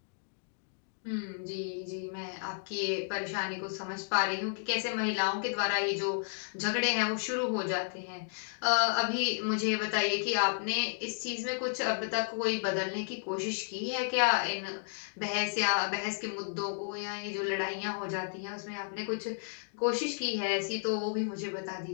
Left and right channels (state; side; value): silent; right; digital silence